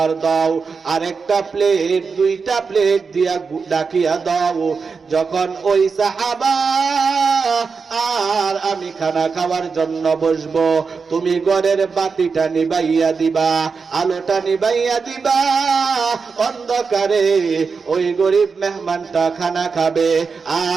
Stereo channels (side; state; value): left; quieter; 5.1 dB